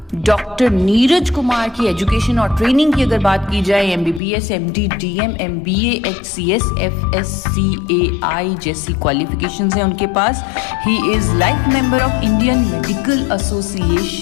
Doctor Neeraj Kumar की एजुकेशन और ट्रेनिंग की अगर बात की जाए, MBBS, MD, DM, MBA, HCS, FSCAI जैसी क्वालिफिकेशंस हैं उनके पास। He is life member of Indian medical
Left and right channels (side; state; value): right; drops out; at 4.2 s